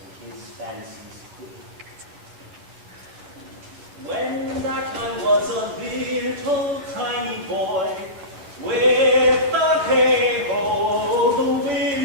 and his fancies queen. When that I was a little tiny boy, with the hay-ho, the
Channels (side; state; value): left; late; 10 ms